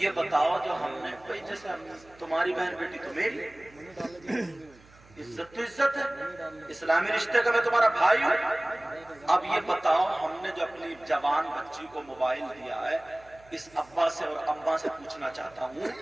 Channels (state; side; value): noise; right; hum, 26 dB below the sound